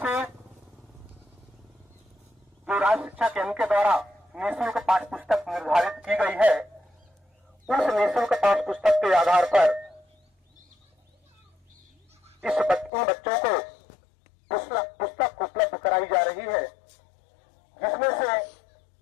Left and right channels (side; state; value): right; drops out; at 12.9 s